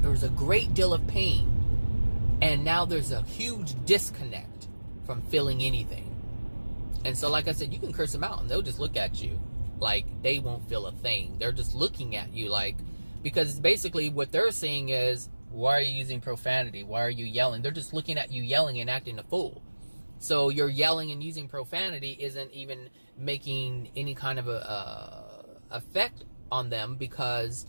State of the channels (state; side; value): inverted; both; correlation -1.00